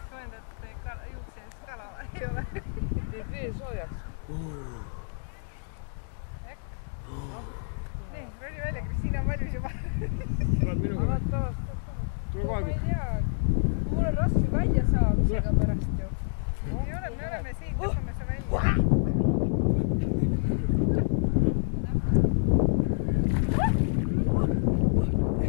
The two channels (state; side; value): silent; right; digital silence